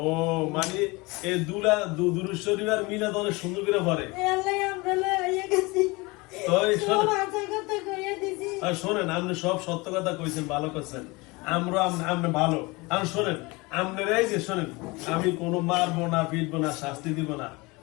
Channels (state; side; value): quieter; right; 24.6 dB